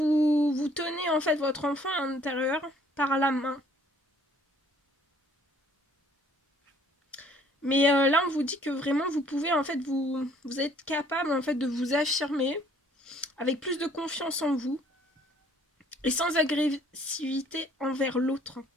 tenez en fait votre enfant intérieur par la main. Mais là, on vous dit que vraiment, vous pouvez en fait, vous êtes capable en fait de vous affirmer avec plus de confiance en vous et sans agressivité envers l'autre.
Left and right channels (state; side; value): normal; both; correlation 0.59